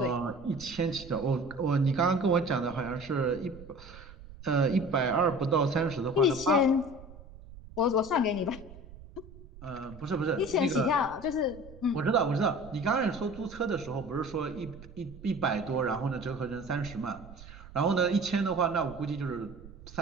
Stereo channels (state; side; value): noise; right; rumble, 18 dB below the sound